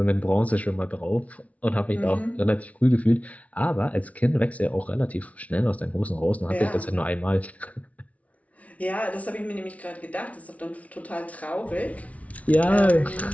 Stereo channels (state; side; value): late; right; 0.067 ms